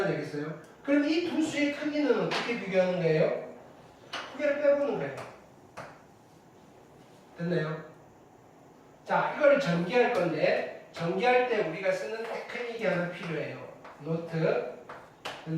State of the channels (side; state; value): both; identical; correlation 1.00